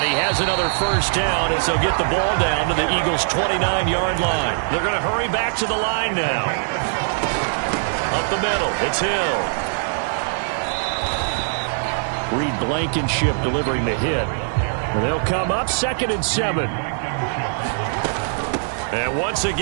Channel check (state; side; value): silent; left; 65 dB below the other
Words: he has another first down as they'll get the ball down to the Eagles' 29-yard line. They're going to hurry back to the line now. Up the middle, it's Hill. Reed Blankenship delivering the hit. And they'll come up 2nd and 7. And once